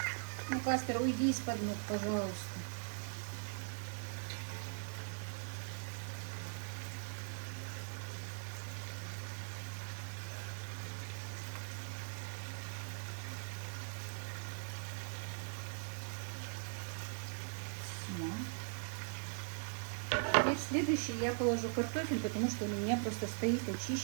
Ну, Каспер, уйди из-под ног, пожалуйста. Теперь следующий я положу картофель, потому что у меня просто стоит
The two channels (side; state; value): left; silent; digital silence